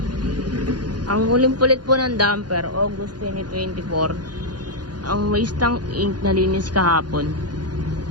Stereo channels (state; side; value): late; left; 0.70 ms